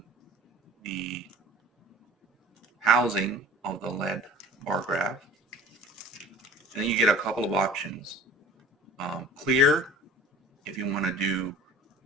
the housing of the lead bar graph, and then you get a couple of options. Clear, if you want to do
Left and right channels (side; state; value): both; normal; correlation 0.43